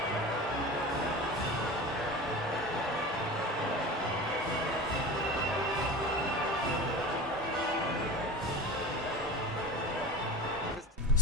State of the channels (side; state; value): both; normal; correlation 0.32